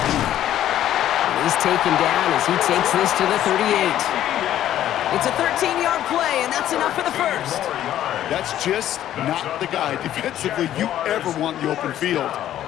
He's taken down as he takes this to the 38. It's a 13-yard play, and that's enough for the 1st. That's just not the guy defensively you ever want in the open field.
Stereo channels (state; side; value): quieter; right; 12.0 dB